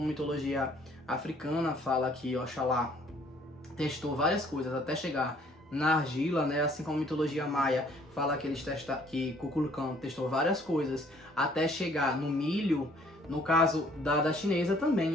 mitologia africana fala que Oxalá testou várias coisas até chegar na argila, né? Assim como mitologia maia fala que que Kukulkan testou várias coisas até chegar no milho. No caso da chinesa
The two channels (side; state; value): both; normal; correlation 0.60